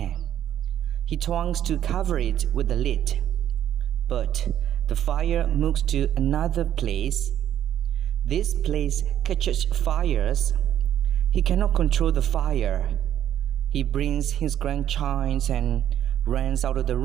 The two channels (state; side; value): quieter; left; 10.8 dB